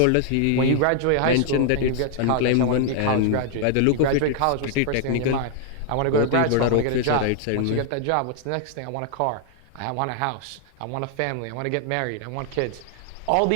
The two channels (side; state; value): both; different; correlation 0.00